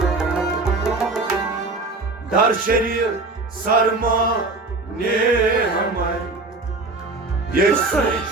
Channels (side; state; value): left; quieter; 3.4 dB